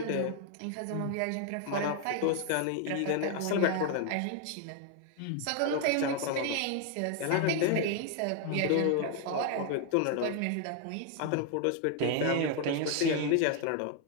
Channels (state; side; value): different; both; correlation 0.00